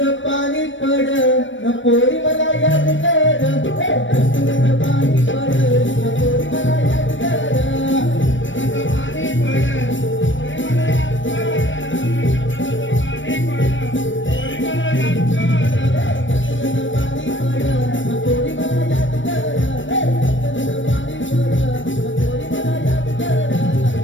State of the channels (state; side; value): late; right; 0.56 ms